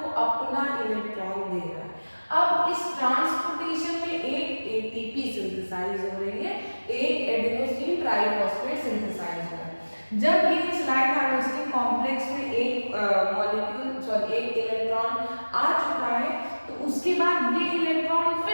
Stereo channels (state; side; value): inverted; both; correlation -1.00